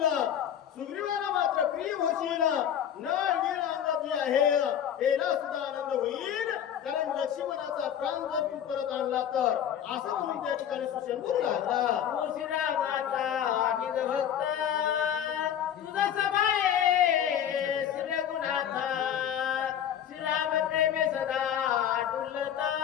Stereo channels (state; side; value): quieter; right; 9.6 dB